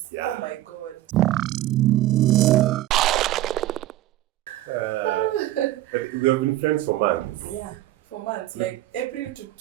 Yeah. Oh my god. We have been friends for months. Yeah, for months. Like April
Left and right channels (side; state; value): left; quieter; 15.1 dB